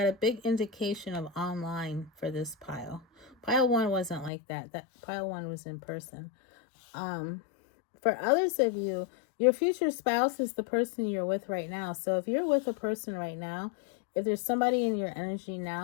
a big indication of online for this pile. Pile 1 wasn't like that. That pile 1 was in person. For others of you, your future spouse is the person you're with right now. So if you're with a person right now, if there's somebody in your energy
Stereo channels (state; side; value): drops out; right; at 4.3 s